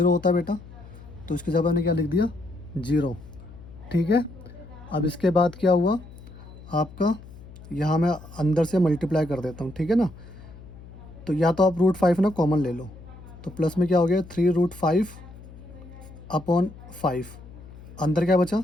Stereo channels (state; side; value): noise; left; hum, 17 dB below the sound